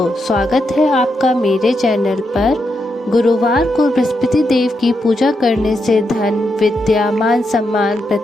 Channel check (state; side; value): normal; both; correlation 0.83